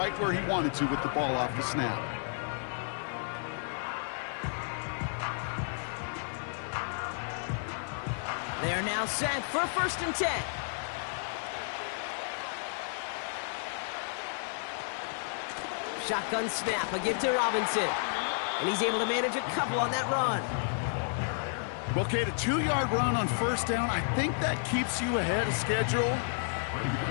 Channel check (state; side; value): silent; right; digital silence